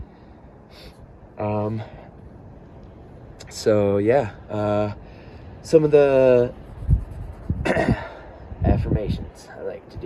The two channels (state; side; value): identical; both; correlation 1.00